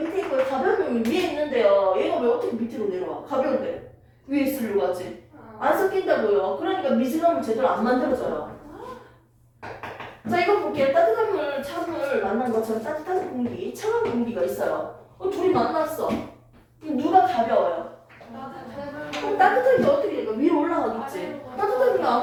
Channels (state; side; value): identical; both; correlation 1.00